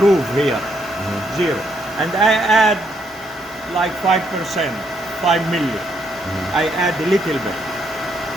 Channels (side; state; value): both; normal; correlation 0.74